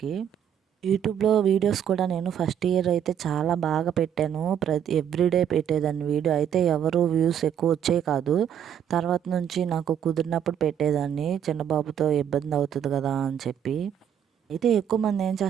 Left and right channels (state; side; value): quieter; left; 9.1 dB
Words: యూట్యూబ్లో వీడియోస్ కూడా నేను ఫస్ట్ ఇయర్ అయితే చాలా బాగా పెట్టాను. ఎవ్రీడే పెట్టేదాన్ని వీడియో. అయితే ఎవరు వ్యూస్ ఎక్కువ వచ్చేవి కాదు. తర్వాత నుంచి నాకు కుదిరినప్పుడు పెట్టేదాన్ని. చిన్న బాబుతో ఇబ్బంది అవుతుంది కదా అని చెప్పి. అయితే ఎక్కువ మంది ఏం